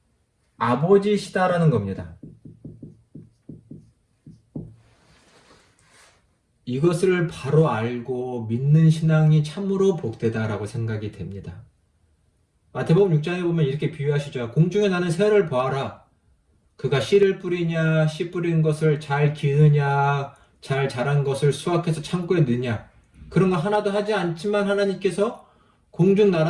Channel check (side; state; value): both; identical; correlation 1.00